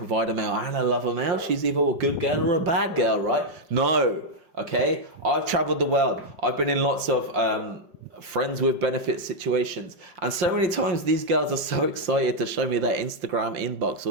male and a lover male. She's either a good girl or a bad girl, right? No. Okay? I've traveled the world. I've been in lots of friends with benefit situations, and so many times these girls are so excited to show me their Instagram inbox or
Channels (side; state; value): left; late; 5.7 ms